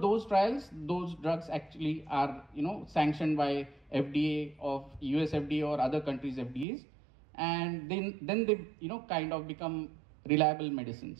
trials, those drugs actually are sanctioned by FDA of US FDA or other countries' FDAs, and then they kind of become reliable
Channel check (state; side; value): drops out; left; at 6.7 s